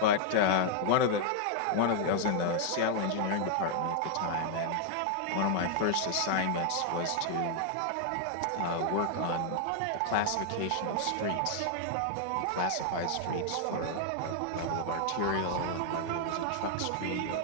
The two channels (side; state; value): both; different; correlation 0.00